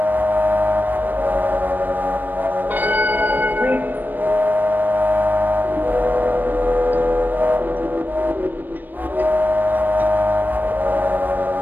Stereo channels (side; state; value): left; late; 0.090 ms